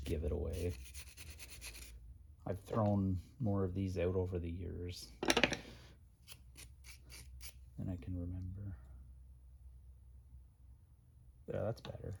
give it away. I've thrown more of these out over the years than I can remember. Yeah, that's better.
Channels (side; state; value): both; identical; correlation 1.00